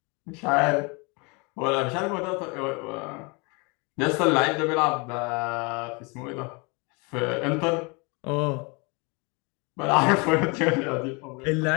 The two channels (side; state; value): right; quieter; 29.9 dB